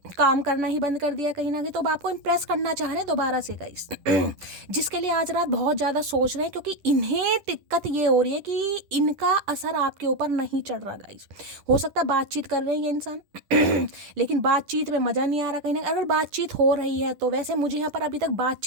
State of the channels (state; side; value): late; left; 10 ms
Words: काम करना ही बंद कर दिया कहीं ना कहीं। तो अब आपको इम्प्रेस करना चाह रहे हैं दोबारा से गाइस जिसके लिए आज रात बहुत ज़्यादा सोच रहे हैं, क्योंकि इन्हें दिक्कत ये हो रही है कि इनका असर आपके ऊपर नहीं चढ़ रहा गाइस। हो सकता है बातचीत कर रहे हैं ये इंसान लेकिन बातचीत में मज़ा नहीं आ रहा कहीं ना। अगर बातचीत हो रही है तो वैसे मुझे यहाँ पर अभी तक